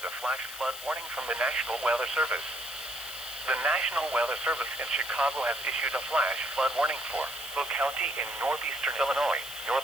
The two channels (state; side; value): noise; left; hiss, 11 dB below the sound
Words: a flash flood warning from the National Weather Service. The National Weather Service in Chicago has issued a flash flood warning for Will County in northeastern Illinois,